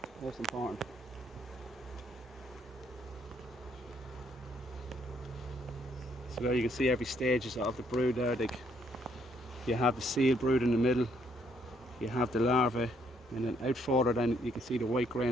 most important. So there you can see every stages of the brood there. Like, you have the seal brood in the middle, you have the larvae, and then out further then you can see the white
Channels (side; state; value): both; normal; correlation 0.70